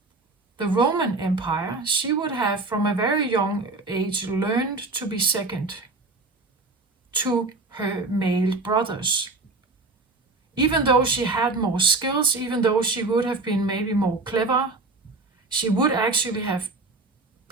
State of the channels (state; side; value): quieter; left; 3.4 dB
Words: the Roman Empire, she would have from a very young age learned to be second to her male brothers. Even though she had more skills, even though she would have been maybe more clever, she would actually have